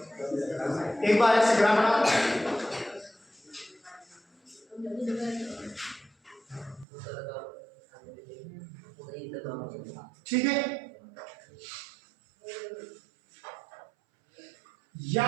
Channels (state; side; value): drops out; left; at 6.9 s